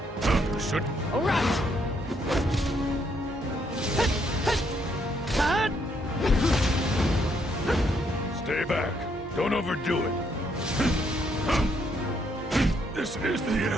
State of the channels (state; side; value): normal; both; correlation 0.72